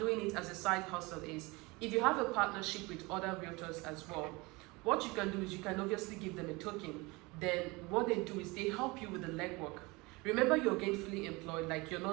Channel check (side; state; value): left; quieter; 24.6 dB